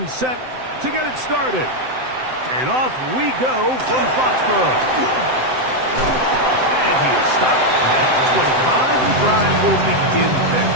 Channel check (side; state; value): left; late; 7.8 ms